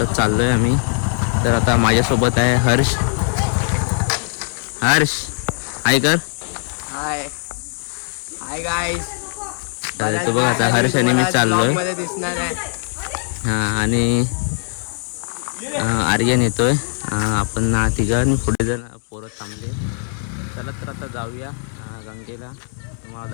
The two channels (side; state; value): right; silent; 60 dB below the other